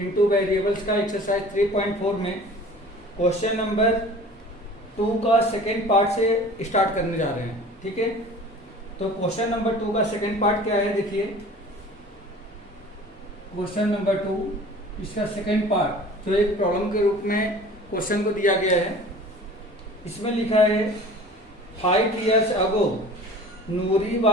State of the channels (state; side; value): normal; both; correlation 0.44